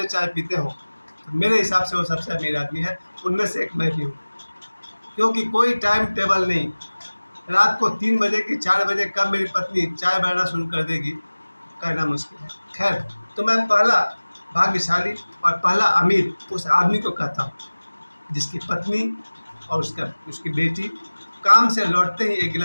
चाय पीते हो तो मेरे हिसाब से वो सबसे अमीर आदमी है। उनमें से एक मैं भी हूँ, क्योंकि कोई टाइम टेबल नहीं। रात को 3 बजे की 4 बजे कब मेरी पत्नी चाय बनाना शुरू कर देगी, कहना मुश्किल है। खैर, तो मैं पहला भाग्यशाली और पहला अमीर उस आदमी को कहता हूँ जिसकी पत्नी और उसकी बेटी काम से लौटते ही एक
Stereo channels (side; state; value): both; inverted; correlation -1.00